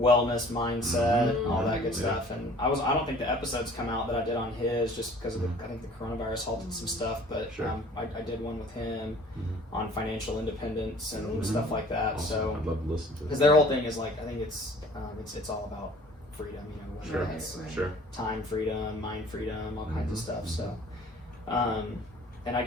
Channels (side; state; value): both; normal; correlation 0.50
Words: mindset, Mhm. all that good Yeah. stuff. And I don't think the episodes come out that I did on his just because of I think the coronavirus halted some stuff. But Sure. I did one with him Mhm. on financial independence and Mhm. stuff like that. Awesome. So I'd love to listen to it. because their whole thing is like I think it's all about freedom. Whether Sure. it's Sure. time freedom, mind freedom, all kinds of Mhm. stuff. So, and I